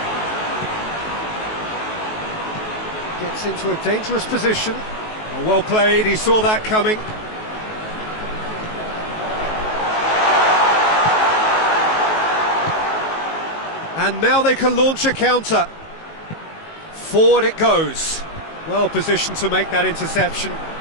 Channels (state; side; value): late; right; 19 ms